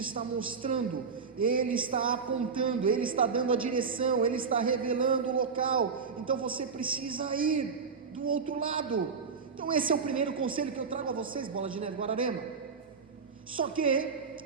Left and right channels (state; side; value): quieter; left; 5.4 dB